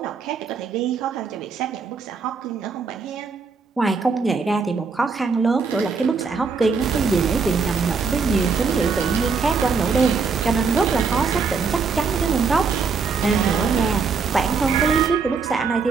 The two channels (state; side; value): quieter; left; 5.1 dB